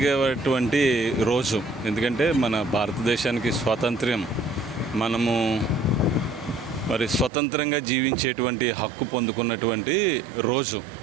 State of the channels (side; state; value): left; drops out; at 7.3 s